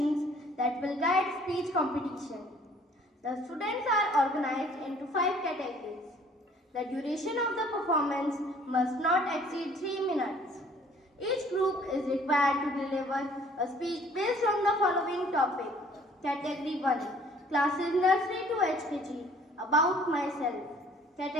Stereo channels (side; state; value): both; normal; correlation 0.56